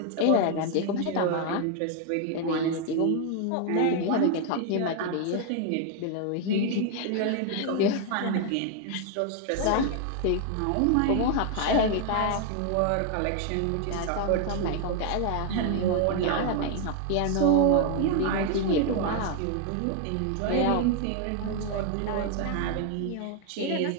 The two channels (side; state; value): both; different; correlation 0.00